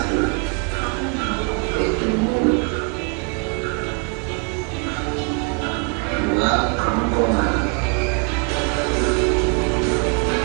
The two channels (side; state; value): left; quieter; 34.2 dB